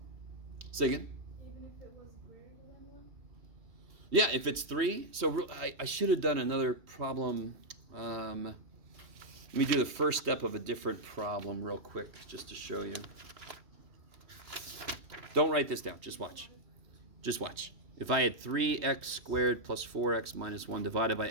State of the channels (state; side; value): late; left; 3.2 ms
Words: Say again? Even if it was greater than 1? Yeah, if it's 3. So I should have done another problem. Let me do the first step of a different problem real quick, just to show you. Don't write this down. Just watch. Just watch. If I had 3x squared plus 4x minus 1 divided by